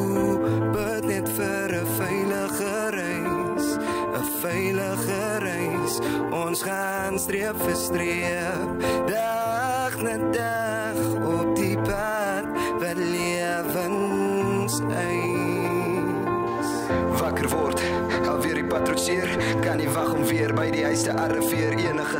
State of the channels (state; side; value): identical; both; correlation 1.00